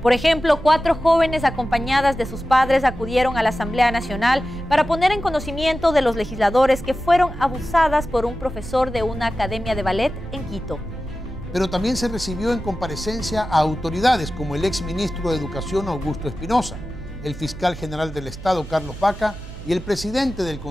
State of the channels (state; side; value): noise; right; hum, 13 dB below the sound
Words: Por ejemplo, 4 jóvenes acompañadas de sus padres acudieron a la Asamblea Nacional para poner en conocimiento de los legisladores que fueron abusadas por un profesor de una academia de ballet en Quito. Pero también se recibió en comparecencia a autoridades como el exministro de Educación Augusto Espinosa, el fiscal general del Estado Carlos Vaca y el presidente del